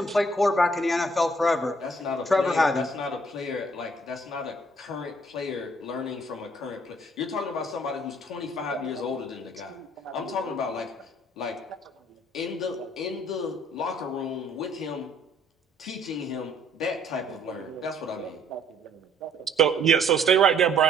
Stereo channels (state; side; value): normal; both; correlation 0.62